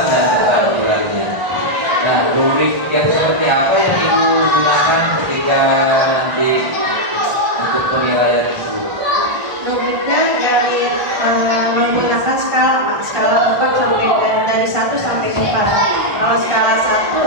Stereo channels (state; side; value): late; left; 1.4 ms